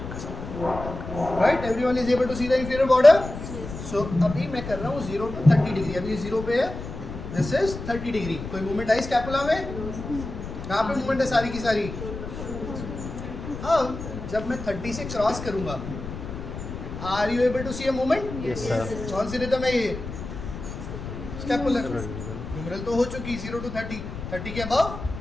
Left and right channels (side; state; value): left; noise; rumble, 9 dB below the sound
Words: Right, everyone is able to see the inferior border. So अभी मैं कर रहा हूँ 0 to 30 डिग्री. अभी 0 पे है, this is 30 डिग्री. कोई मूवमेंट आई स्कैपुला में? कहाँ पे मूवमेंट है सारी की सारी? हाँ, जब मैं 30 से क्रॉस करूंगा, are you able to see a movement? yes sir, कौन सी रिदम है ये? स्कैपुलर। ह्यूमरल तो हो चुकी 0 to 30, 30 के अबव